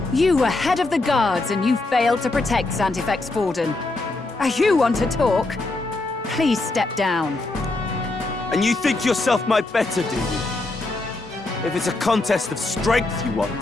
You were head of the guards and you failed to protect Santifex Forden. You want to talk? Please step down. And you think yourself my better, do you? If it's a contest of strength you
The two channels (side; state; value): right; quieter; 3.1 dB